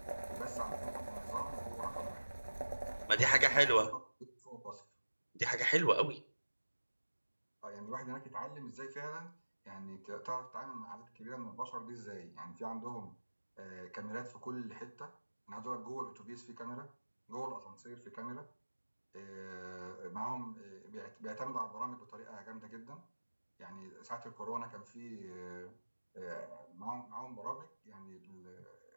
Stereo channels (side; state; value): both; inverted; correlation -1.00